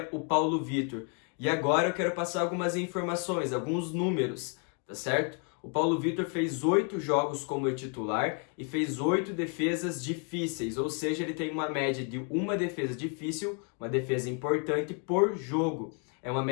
o Paulo Vitor. E agora eu quero passar algumas informações, alguns números, tá certo? O Paulo Vitor fez 8 jogos como titular e fez 8 defesas difíceis, ou seja, ele tem uma média de uma defesa difícil, uma defesa importante por jogo. É uma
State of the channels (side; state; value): right; quieter; 38.9 dB